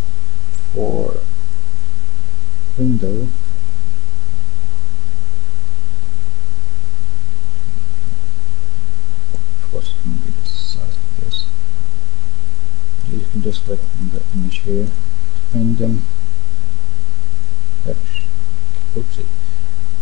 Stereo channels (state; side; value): normal; both; correlation 0.03